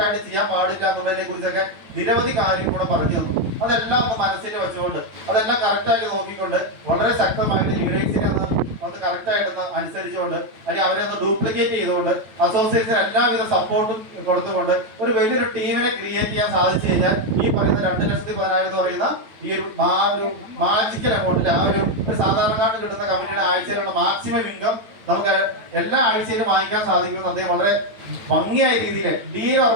ചെയ്യാൻ പാടില്ല എന്നുള്ളതിനെ കുറിച്ചൊക്കെ നിരവധി കാര്യങ്ങൾ കൂടെ പറഞ്ഞു തന്നു. അതെല്ലാം ഒന്ന് മനസ്സിൽ വെച്ചുകൊണ്ട് അതെല്ലാം കറക്റ്റായിട്ട് നോക്കിക്കൊണ്ട് വളരെ ശക്തമായിട്ട് ലീഡേഴ്സിനെ അത് കറക്റ്റായിട്ടൊന്ന് അനുസരിച്ചുകൊണ്ട് അല്ലെങ്കിൽ അവരെ ഒന്ന് ഡ്യൂപ്ലിക്കേറ്റ് ചെയ്തുകൊണ്ട് അസോസിയേറ്റ്സിന് എല്ലാവിധ സപ്പോർട്ടും കൊടുത്തുകൊണ്ട് ഒരു വലിയൊരു ടീമിനെ ക്രിയേറ്റ് ചെയ്യാൻ സാധിച്ചു കഴിഞ്ഞാൽ ഈ പറയുന്ന 2,10,10,000 എന്ന് പറയുന്ന ഈ ഒരു മാജിക്കൽ എമൗണ്ടിൽ ആ ഒരു സാധാരണക്കാരന് കിട്ടുന്ന കമ്പനിയുടെ ആഴ്ചയിലുള്ള മാക്സിമം ഇൻകം നമുക്ക് എല്ലാ ആഴ്ചയിലും വാങ്ങിക്കാൻ സാധിക്കുമെന്ന് അദ്ദേഹം വളരെ ഭംഗിയായ രീതിയിൽ ഡീൽ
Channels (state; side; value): late; left; 9.0 ms